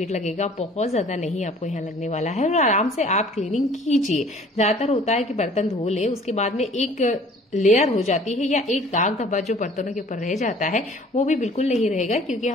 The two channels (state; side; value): normal; both; correlation 0.52